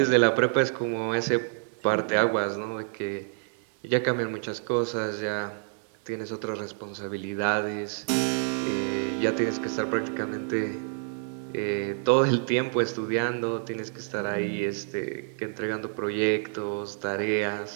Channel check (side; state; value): left; silent; 56 dB below the other